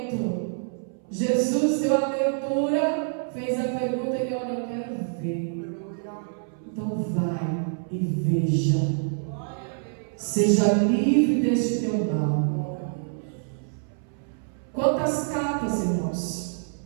Jesus deu a abertura, fez a pergunta e ele: olha, eu quero ver. Então vai e veja. Seja livre deste teu mal. Quantas capas, irmãos,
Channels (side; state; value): left; silent; 60 dB below the other